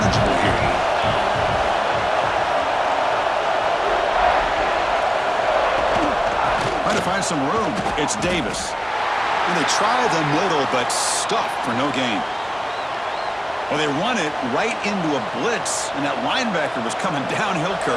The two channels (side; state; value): both; identical; correlation 1.00